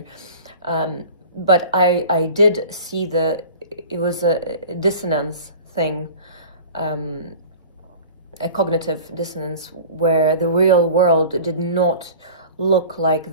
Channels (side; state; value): both; inverted; correlation -0.41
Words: But I did see it was a dissonance thing, a cognitive dissonance, where the real world did not look